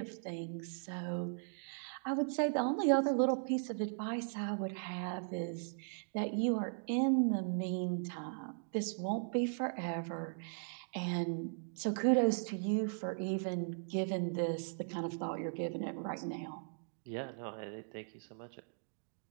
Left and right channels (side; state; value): left; silent; digital silence